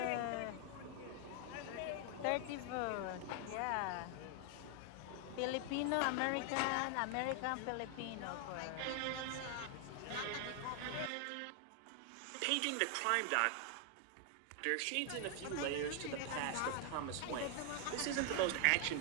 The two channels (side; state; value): both; different; correlation 0.00